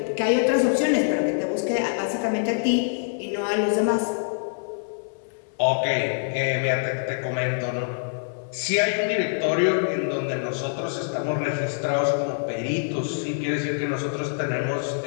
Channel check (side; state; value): right; silent; 58 dB below the other